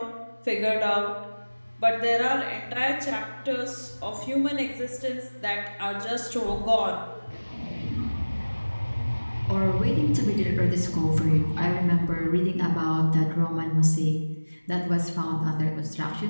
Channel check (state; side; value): inverted; both; correlation -1.00